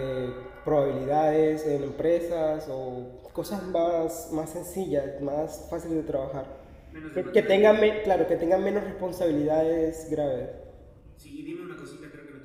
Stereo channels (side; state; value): both; identical; correlation 1.00